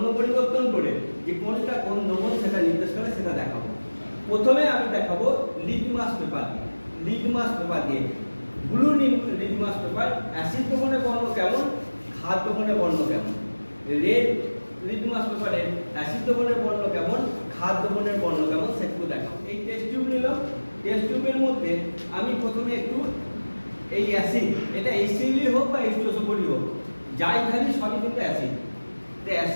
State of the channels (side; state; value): both; inverted; correlation -1.00